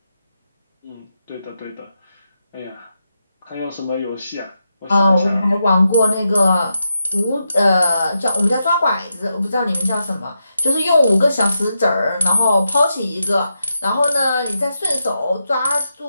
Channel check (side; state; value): both; inverted; correlation -0.86